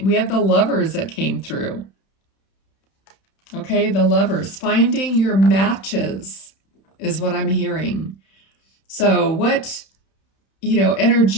We have the Lovers that came through. Okay, the Lovers. Finding your matches is what I'm hearing. So what,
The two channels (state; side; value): late; right; 31 ms